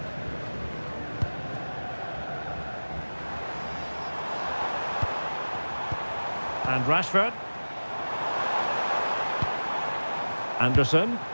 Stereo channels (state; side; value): inverted; both; correlation -1.00